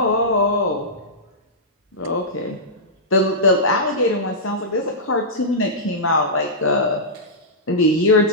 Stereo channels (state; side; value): normal; both; correlation -0.15